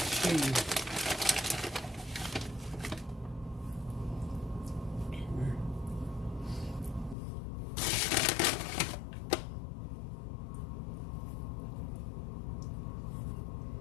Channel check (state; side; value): drops out; right; at 7.2 s